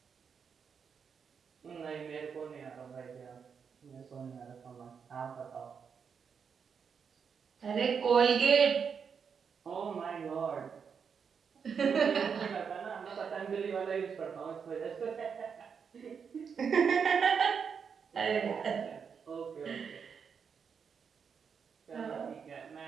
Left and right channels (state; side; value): quieter; left; 6.5 dB